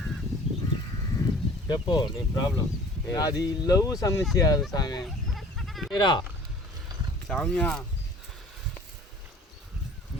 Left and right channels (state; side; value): normal; both; correlation 0.48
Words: చెప్పు నీ ప్రాబ్లం అది లవ్ సమస్య అది స్వామి మీరా సామ్య